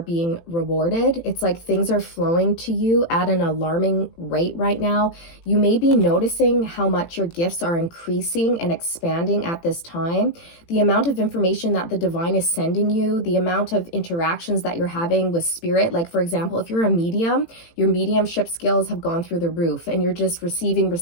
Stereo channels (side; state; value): right; late; 18 ms